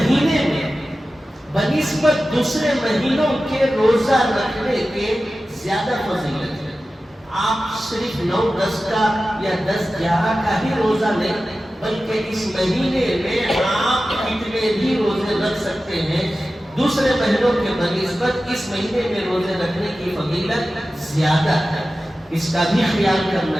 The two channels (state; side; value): normal; both; correlation 0.94